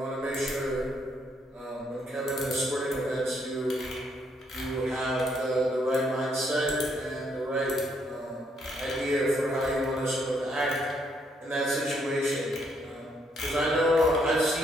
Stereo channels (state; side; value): normal; both; correlation 0.72